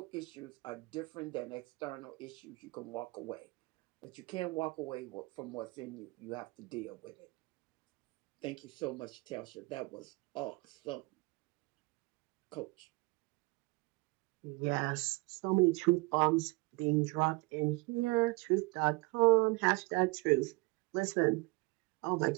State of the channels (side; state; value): left; quieter; 25.9 dB